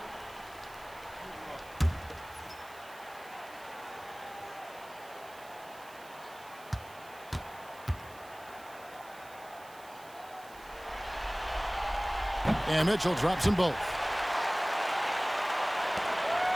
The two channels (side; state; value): right; noise; hiss, 21 dB below the sound